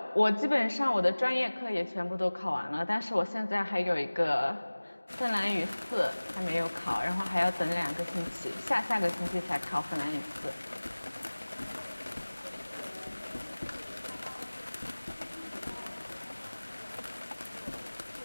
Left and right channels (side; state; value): both; inverted; correlation -1.00